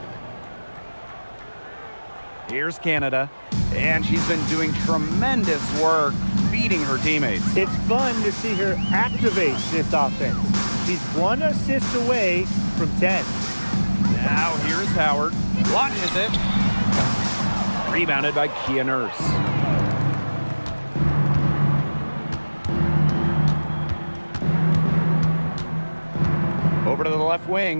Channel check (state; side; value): inverted; both; correlation -1.00